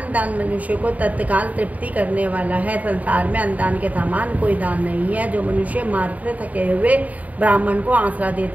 मनुष्य को तत्काल तृप्ति करने वाला है। संसार में अन्नदान के समान कोई दान नहीं है। जो मनुष्य मार्ग से थके हुए ब्राह्मण को आसरा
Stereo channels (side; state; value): left; late; 0.072 ms